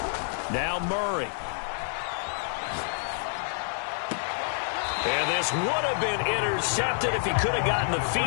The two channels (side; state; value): right; silent; digital silence